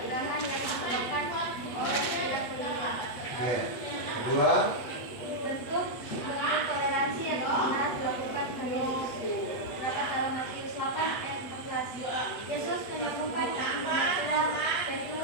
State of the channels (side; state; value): right; late; 8.2 ms